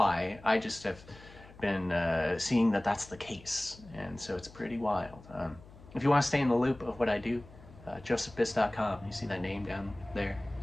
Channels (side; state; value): left; noise; hum, 21 dB below the sound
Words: I just have been seeing that that's the case. And so it's pretty wild. If you want to stay in the loop of what I do, josephbiss.com. You see that name down there